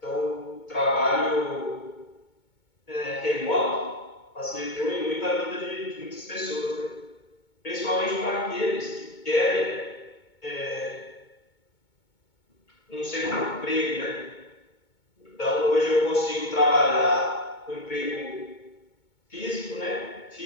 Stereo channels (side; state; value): right; late; 2.2 ms